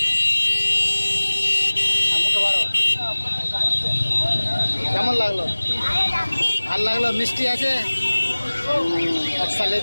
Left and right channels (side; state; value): both; inverted; correlation -1.00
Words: মুখে বড়। কেমন লাগলো? ভাল লাগলো, মিষ্টি আছে। একটা